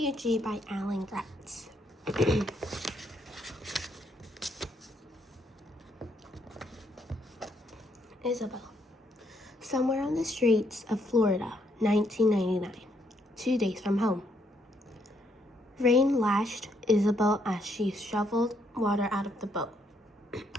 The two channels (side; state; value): both; normal; correlation 0.73